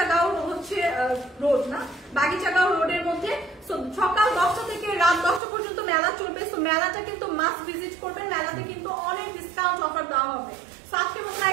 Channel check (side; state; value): left; drops out; at 5.4 s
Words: হচ্ছে রোড না, বাগিচাগাঁও রোডের মধ্যে। সকাল 10টা থেকে রাত 10টা পর্যন্ত মেলা চলবে। তো মেলাটা কিন্তু মাস্ট ভিজিট করবেন। মেলাতে কিন্তু অনেক ডিসকাউন্ট অফার দেওয়া হবে। আজকের মতো